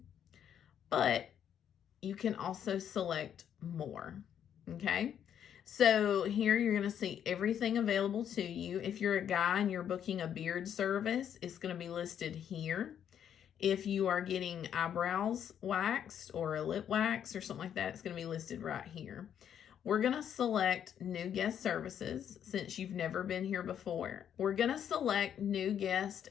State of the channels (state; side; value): quieter; right; 9.2 dB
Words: But you can also select more, okay? So here you're going to see everything available to you. If you're a guy and you're booking a beard service, it's going to be listed here. If you are getting eyebrows waxed or a lip wax or something like that, it's going to be listed right here. We're going to select New Guest Services since you've never been here before. We're going to select New Guest